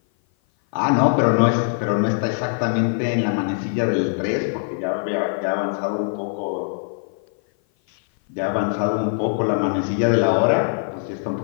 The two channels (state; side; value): silent; right; 56 dB below the other